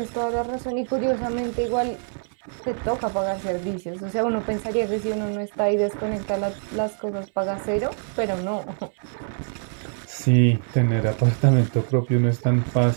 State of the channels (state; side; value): silent; left; digital silence